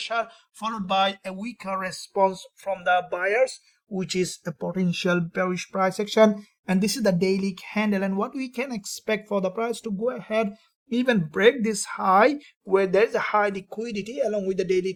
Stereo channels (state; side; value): identical; both; correlation 1.00